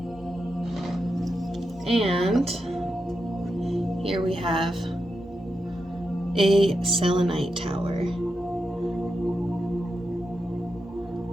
And here we have a Selenite Tower.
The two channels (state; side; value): normal; both; correlation 0.87